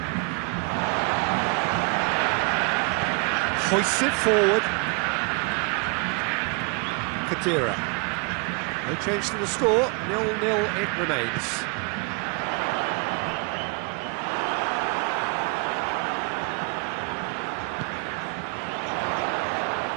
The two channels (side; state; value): left; quieter; 33.3 dB